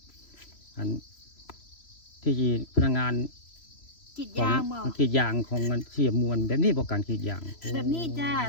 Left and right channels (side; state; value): right; late; 3.0 ms